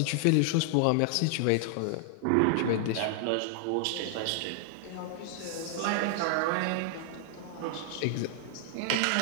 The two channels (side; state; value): both; different; correlation 0.00